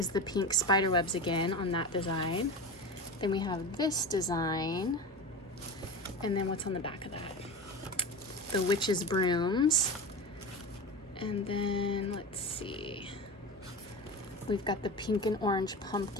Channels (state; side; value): normal; both; correlation 0.27